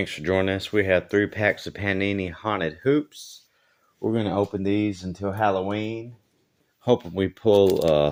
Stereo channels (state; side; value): identical; both; correlation 1.00